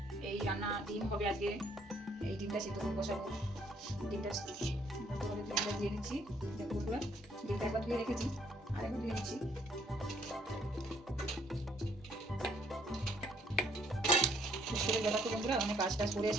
এই রান্না, ডিম হবে আজকে। এই ডিমটা সিদ্ধ করে বসাবো। ডিমটা দিয়ে নিচ্ছি। দেখো বন্ধুরা, ডিমটা একবার ধুয়ে রেখেছি, আর একবার ধুয়ে নিচ্ছি। দেখো বন্ধুরা, অনেক কাজ টাজ করে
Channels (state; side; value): normal; both; correlation 0.66